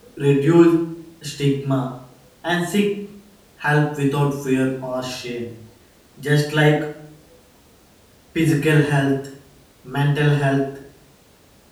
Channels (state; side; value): identical; both; correlation 1.00